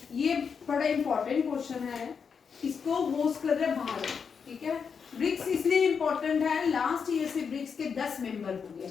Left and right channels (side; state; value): right; quieter; 6.2 dB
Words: ये बड़ा इंपॉर्टेंट क्वेश्चन है, इसको होस्ट कर रहे भारत, ठीक है। ब्रिक्स इसलिए इंपॉर्टेंट है, लास्ट ईयर से ब्रिक्स के 10 मेंबर हो गए।